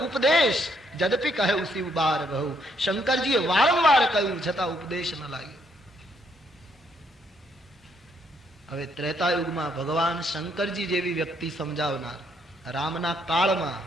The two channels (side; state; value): both; normal; correlation 0.72